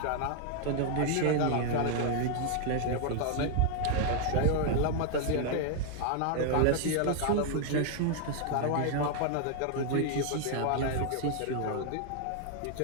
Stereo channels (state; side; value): different; both; correlation 0.00